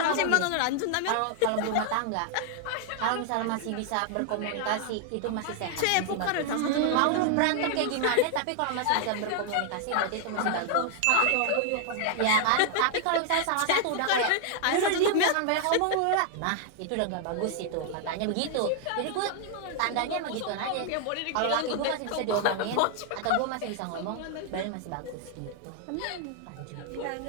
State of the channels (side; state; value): both; different; correlation 0.00